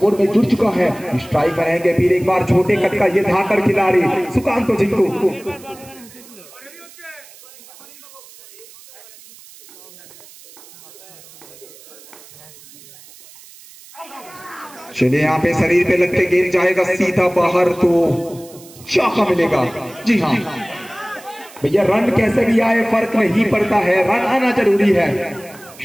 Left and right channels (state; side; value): noise; right; hiss, 21 dB below the sound